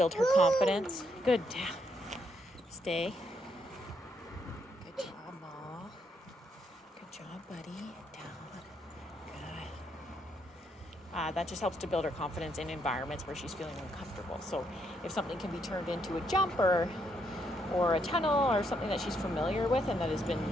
her confidence. Good, down. Stay. Good job, Ma. Good job, buddy. Down. Good. That just helps to build her confidence in environments where she's feeling uncomfortable. So if something can be turned into a jump or a tunnel or something that she's familiar with and that has been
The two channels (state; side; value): normal; both; correlation 0.75